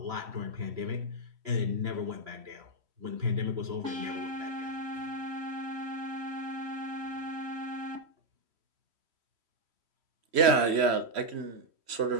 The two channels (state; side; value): late; left; 3.1 ms